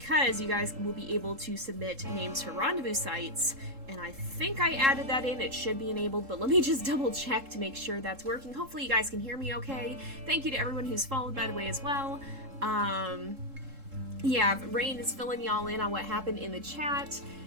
you guys will be able to submit names for rendezvous sites. And I think I added that in. It should be enabled, but let me just double check to make sure that's working. Hopefully you guys can hear me okay. Thank you to everyone who's followed, by the way, as well. Yeah, Rain is filling y'all in on what happened in the chat.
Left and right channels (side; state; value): left; late; 3.7 ms